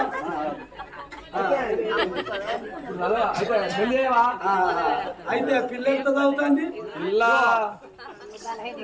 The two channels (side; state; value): both; identical; correlation 1.00